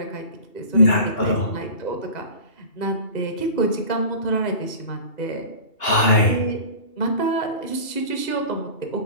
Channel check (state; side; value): late; right; 2.7 ms